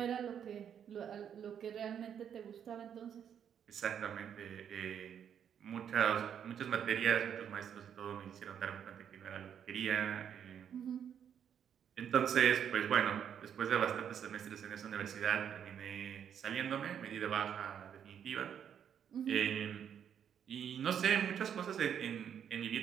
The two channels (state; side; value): quieter; left; 8.6 dB